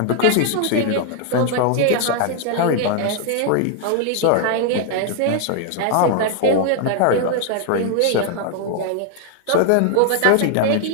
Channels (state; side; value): different; both; correlation 0.00